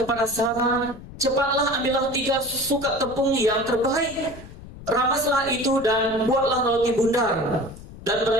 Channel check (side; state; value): left; noise; rumble, 16 dB below the sound